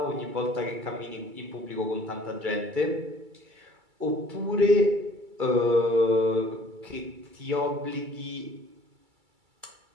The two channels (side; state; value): left; late; 2.3 ms